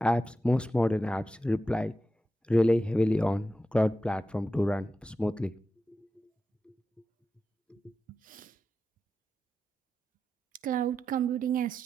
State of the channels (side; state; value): both; normal; correlation 0.90